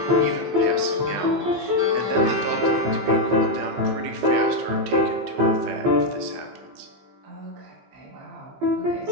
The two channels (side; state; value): left; late; 16 ms